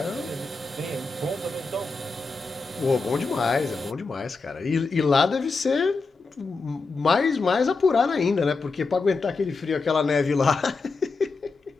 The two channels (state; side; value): quieter; right; 4.1 dB